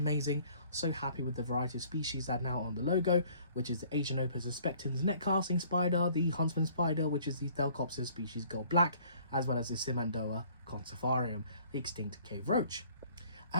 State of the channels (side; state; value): both; inverted; correlation -0.56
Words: So happy with the variety of species that are now on the logo, which is the Asian Opus aspectans net casting spider, the huntsman spider, which is the Thelcopsis species gold black, as well as the Simandoa conservarium, the extinct cave roach.